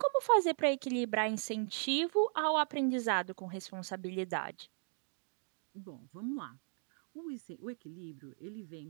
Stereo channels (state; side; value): silent; left; 53 dB below the other